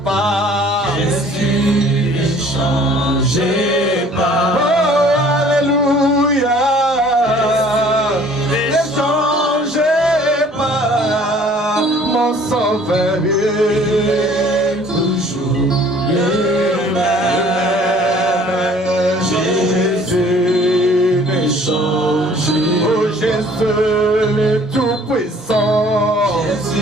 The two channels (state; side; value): normal; both; correlation 0.54